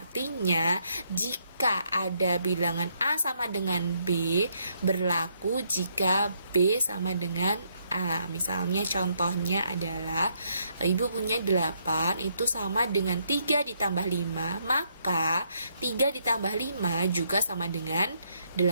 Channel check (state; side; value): inverted; both; correlation -0.73